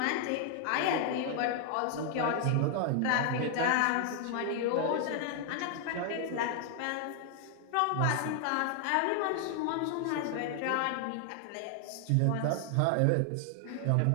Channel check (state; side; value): different; both; correlation 0.00